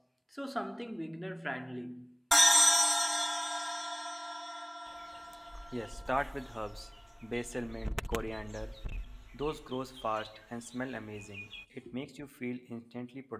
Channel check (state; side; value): identical; both; correlation 1.00